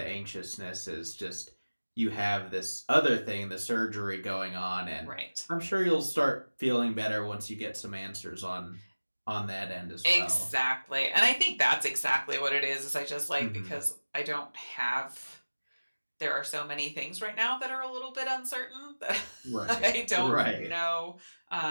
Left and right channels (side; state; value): both; inverted; correlation -1.00